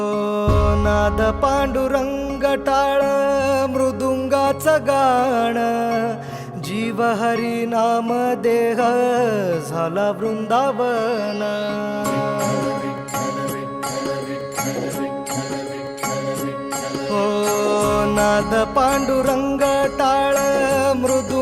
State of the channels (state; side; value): identical; both; correlation 1.00